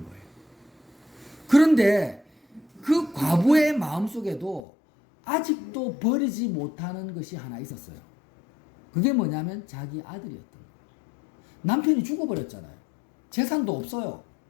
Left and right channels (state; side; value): drops out; right; at 4.7 s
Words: 거예요. 그런데 그 과부의 마음속에도 아직도 버리지 못하는 것이 하나 있었어요. 그게 뭐냐면 자기 아들이었던 거예요. 남편이 죽어버렸잖아요. 재산도 없어요.